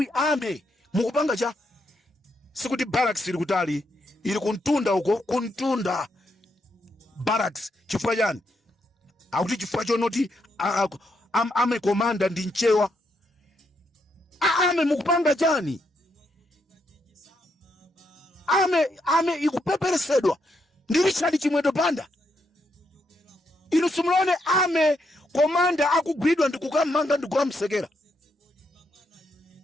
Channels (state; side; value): normal; both; correlation 0.79